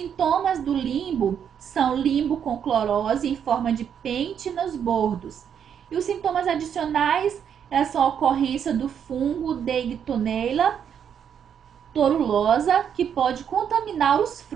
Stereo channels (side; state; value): left; quieter; 8.2 dB